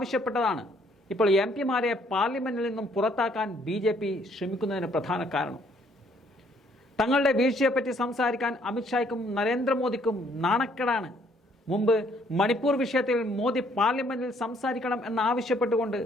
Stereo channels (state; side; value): normal; both; correlation 0.65